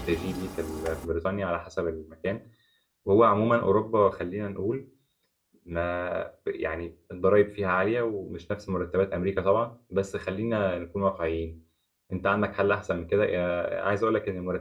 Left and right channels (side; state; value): both; identical; correlation 1.00